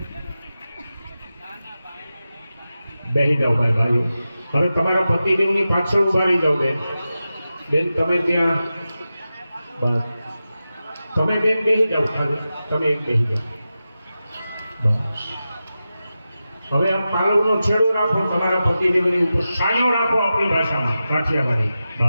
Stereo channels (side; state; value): both; inverted; correlation -0.92